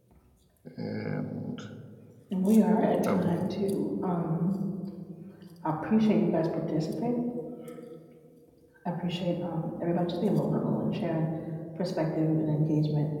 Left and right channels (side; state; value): both; identical; correlation 1.00